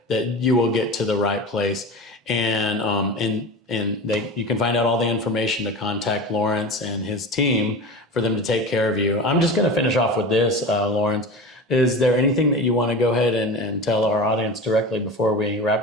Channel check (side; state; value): both; normal; correlation 0.30